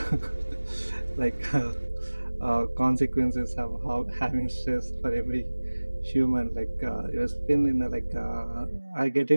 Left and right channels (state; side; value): inverted; both; correlation -1.00